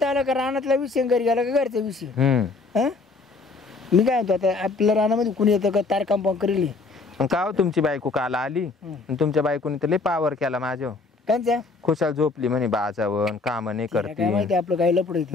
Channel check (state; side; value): quieter; right; 3.9 dB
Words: आला का रानातला विषय घरी गेला का घरचा विषय मी काय म्हणतो आता आपल्या रानामध्ये कुणी येतं का तार कंपाऊंड करेल का हो तुमची बायको काल आली तुमच्या बायकोने तर लय पावर केला माझ्या त्यांच्या खुशाल झोपली म्हणे बाजावर काम नाही काय करते माहिती आपलं काही लपड